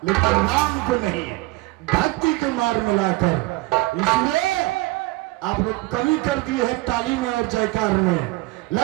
लेकिन राम को नहीं, भक्ति को मार्ग में लाकर। इसलिए आप लोग कमी कर दिए हैं ताली में और जयकार में।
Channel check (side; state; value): left; quieter; 20.6 dB